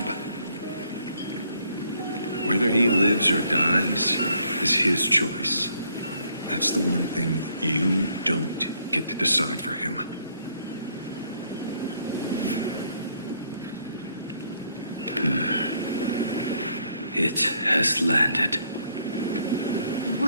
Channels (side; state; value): both; inverted; correlation -0.68